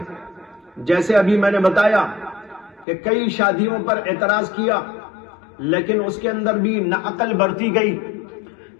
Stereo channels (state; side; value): drops out; right; at 2.9 s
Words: جیسے ابھی میں نے بتایا کہ کئی شادیوں پر اعتراض کیا، لیکن اس کے اندر بھی نہ عقل برتی گئی،